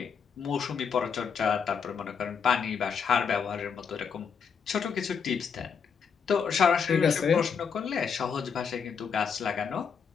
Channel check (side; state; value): right; quieter; 6.5 dB